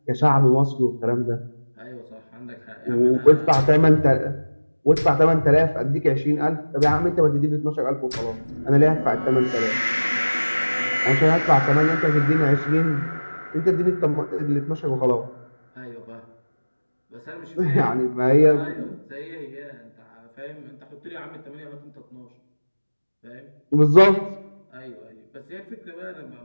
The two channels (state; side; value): inverted; both; correlation -1.00